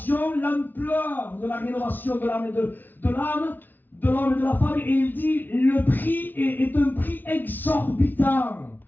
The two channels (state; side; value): late; right; 0.088 ms